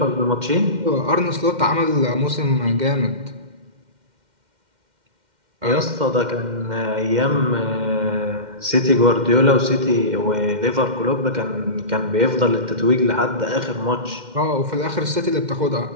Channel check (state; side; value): late; left; 2.1 ms